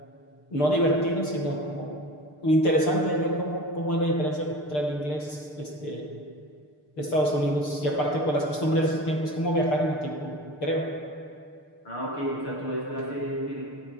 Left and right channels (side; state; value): right; late; 6.7 ms